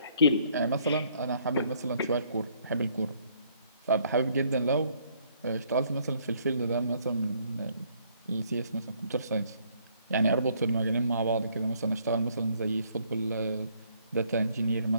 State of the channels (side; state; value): both; inverted; correlation -0.66